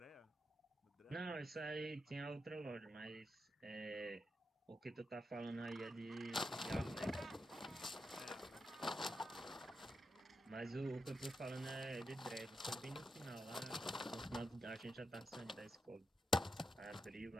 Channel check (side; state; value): both; normal; correlation 0.86